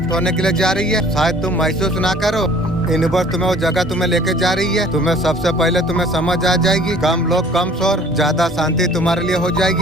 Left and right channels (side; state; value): both; normal; correlation 0.51